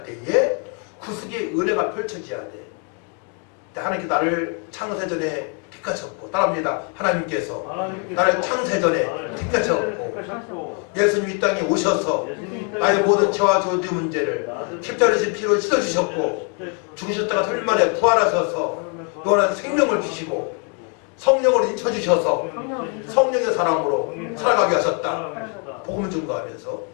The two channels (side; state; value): right; quieter; 38.8 dB